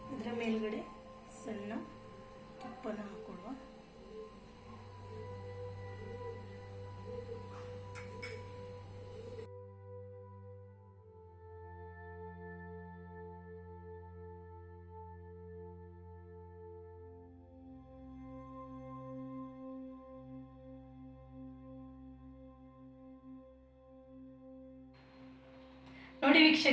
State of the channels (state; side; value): identical; both; correlation 1.00